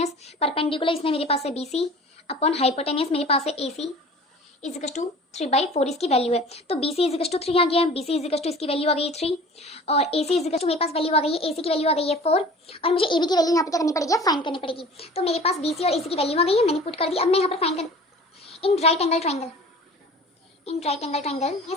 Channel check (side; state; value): both; normal; correlation 0.44